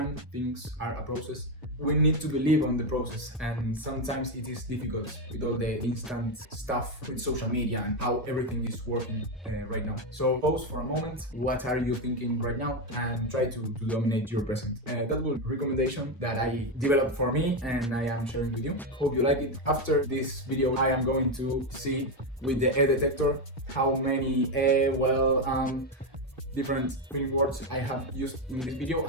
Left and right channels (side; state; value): both; normal; correlation 0.08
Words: things are a process. We need to believe on the process, and sometimes it is difficult with all the instant stuff with social media and how everything is working right now. So pause for a moment, what are you thinking right now, and try to dominate your present. That was a recommendation that I developed for me and I am sharing with you. Hope you like it. After this video I am going to see with the eh-detector how many different feeling words I have used in this video,